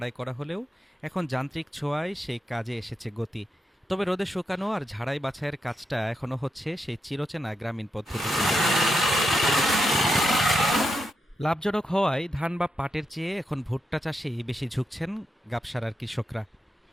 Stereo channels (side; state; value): both; normal; correlation 0.84